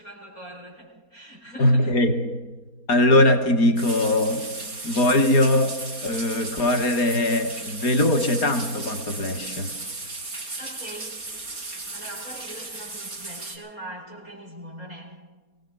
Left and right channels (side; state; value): right; late; 4.3 ms